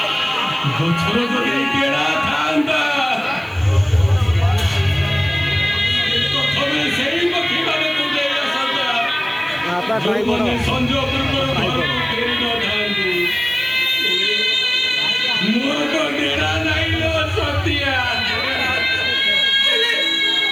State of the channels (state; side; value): noise; right; hiss, 29 dB below the sound